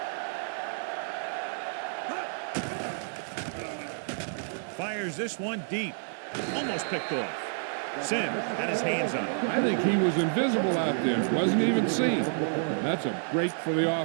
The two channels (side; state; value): left; silent; digital silence